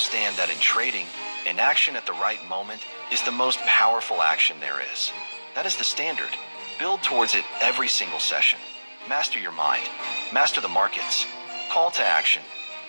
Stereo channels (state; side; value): inverted; both; correlation -1.00